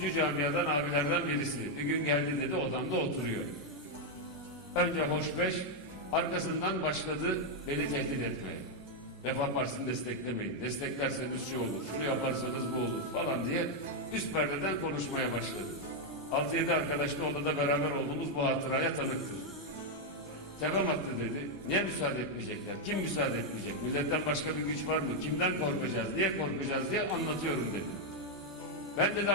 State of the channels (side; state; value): both; normal; correlation 0.00